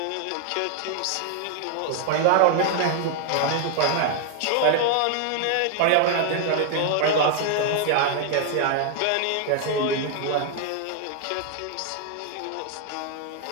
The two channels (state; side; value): different; both; correlation 0.00